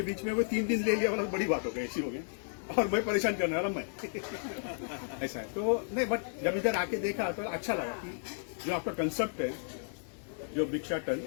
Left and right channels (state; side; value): silent; right; 56 dB below the other